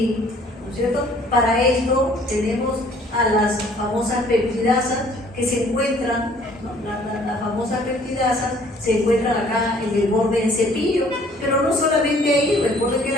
¿no es cierto?, para esto tenemos a las famosas peptidasas que se encuentran, ¿no?, las famosas peptidasas se encuentran acá en el borde del cepillo, pero no solamente ahí. Recuerden que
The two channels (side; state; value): both; normal; correlation 0.57